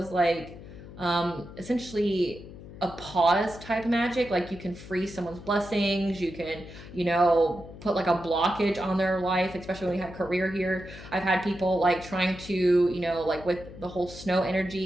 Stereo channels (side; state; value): left; noise; hum, 15 dB below the sound